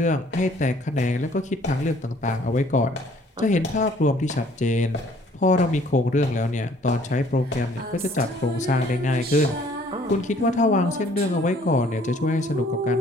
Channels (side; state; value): both; normal; correlation 0.58